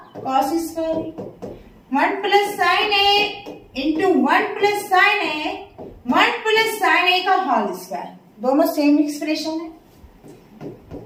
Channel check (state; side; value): identical; both; correlation 1.00